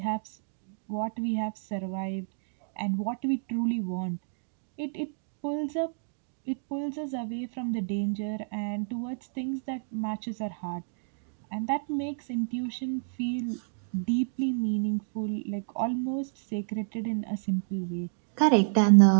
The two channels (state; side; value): silent; left; digital silence